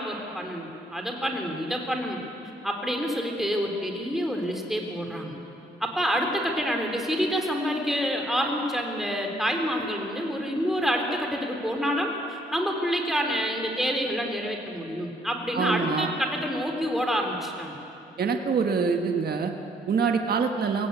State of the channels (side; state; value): both; normal; correlation 0.67